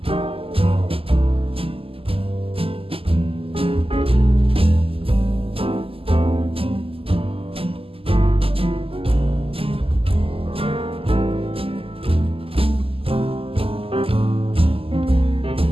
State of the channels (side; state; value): left; late; 0.27 ms